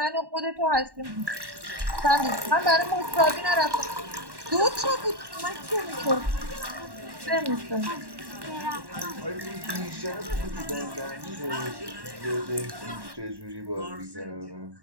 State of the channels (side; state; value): left; late; 1.1 ms